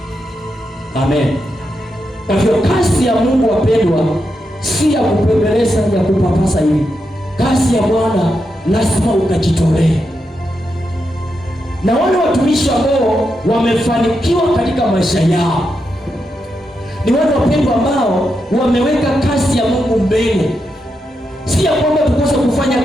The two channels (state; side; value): normal; both; correlation 0.85